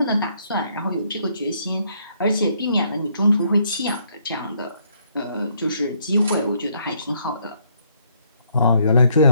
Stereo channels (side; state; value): both; inverted; correlation -0.70